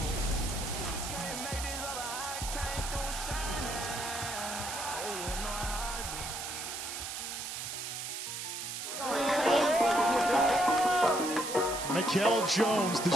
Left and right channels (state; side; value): noise; right; hiss, 6 dB below the sound